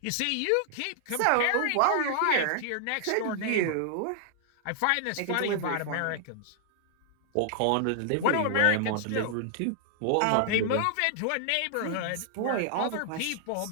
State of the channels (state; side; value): different; both; correlation -0.01